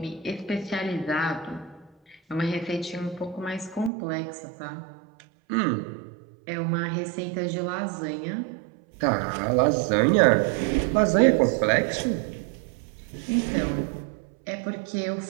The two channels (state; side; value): drops out; left; at 3.9 s